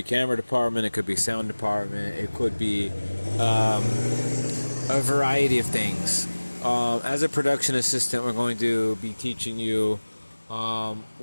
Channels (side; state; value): both; inverted; correlation -1.00